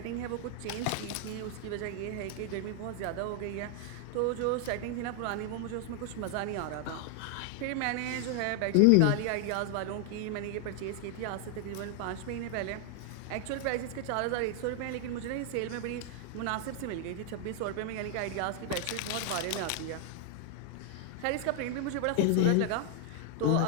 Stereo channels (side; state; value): both; different; correlation 0.00